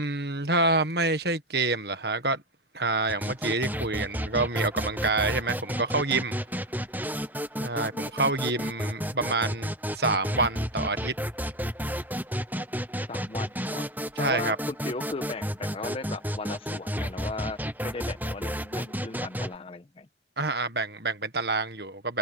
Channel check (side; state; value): both; normal; correlation 0.16